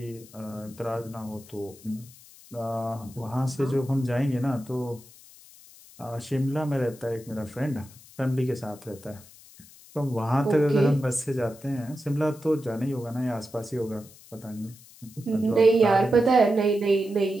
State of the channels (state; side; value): noise; left; hiss, 22 dB below the sound